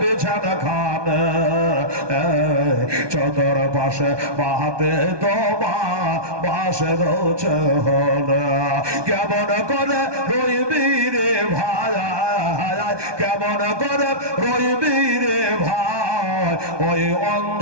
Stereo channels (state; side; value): late; left; 1.2 ms